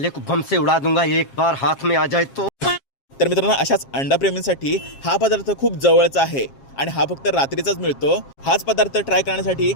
को बम से उड़ा दूंगा एक बार हाथ में आ जाए तो. तर मित्रांनो, अशाच अंडाप्रेमींसाठी हा पदार्थ खूप जवळचा आहे आणि हा फक्त रात्रीचाच मिळतो. हाच पदार्थ ट्राय करण्यासाठी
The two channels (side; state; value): right; late; 7.4 ms